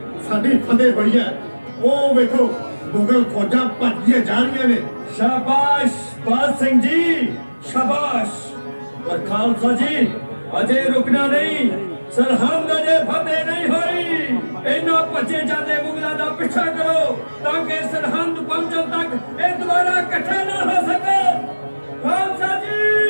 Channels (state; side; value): inverted; both; correlation -1.00